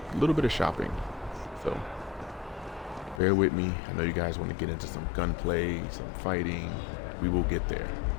little bit of shopping. So bear with me. I know you guys want to get into some gunplay, some fighting. We will get there.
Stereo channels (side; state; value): right; drops out; at 3.2 s